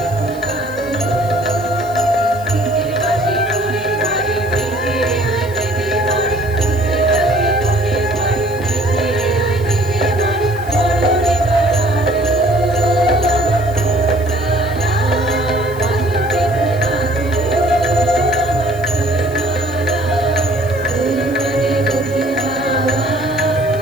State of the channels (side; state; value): right; noise; hiss, 21 dB below the sound